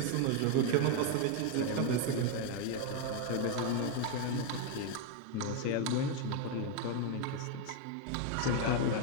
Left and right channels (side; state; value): both; different; correlation 0.01